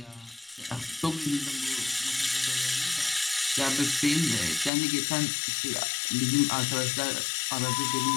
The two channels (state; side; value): drops out; right; at 4.7 s